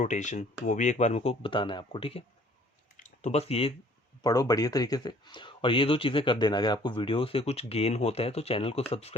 वो भी एक बार मेरे को बताना है आपको। ठीक है, तो बस ये पढ़ो बढ़िया तरीके से, और ये 2 चीज़ें कर देना। अगर आपको वीडियो से कुछ गेन होता है तो चैनल को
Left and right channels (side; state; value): both; normal; correlation 0.56